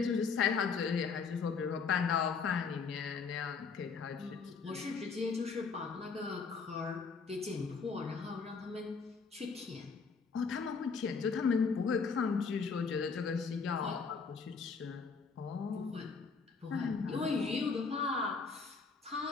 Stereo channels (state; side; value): quieter; right; 5.2 dB